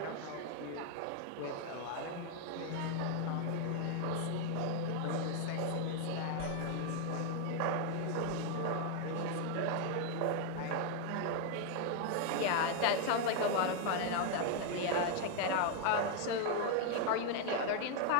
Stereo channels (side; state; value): both; different; correlation 0.00